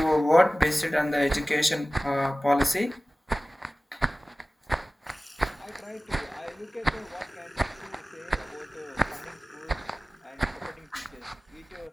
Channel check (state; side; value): normal; both; correlation 0.97